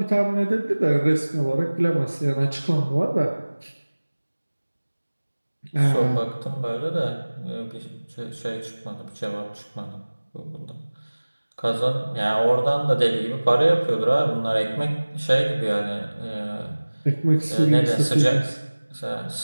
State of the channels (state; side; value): inverted; both; correlation -1.00